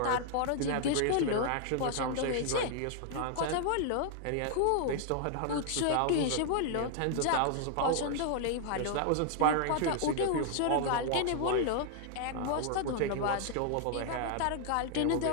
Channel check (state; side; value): different; both; correlation 0.00